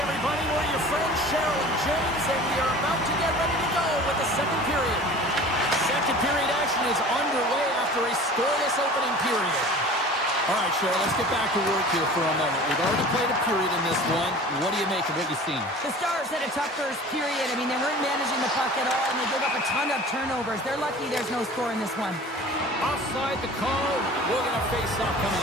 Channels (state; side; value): normal; both; correlation 0.41